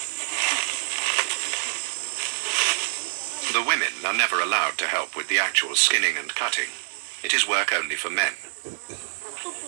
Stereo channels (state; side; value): silent; left; 61 dB below the other